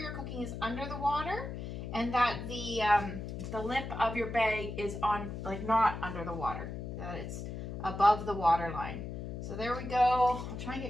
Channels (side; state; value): left; noise; hum, 7 dB below the sound